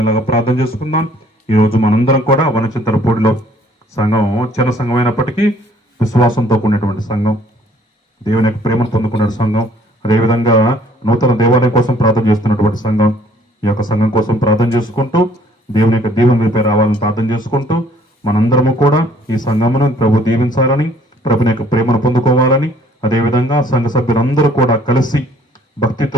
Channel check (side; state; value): both; normal; correlation 0.60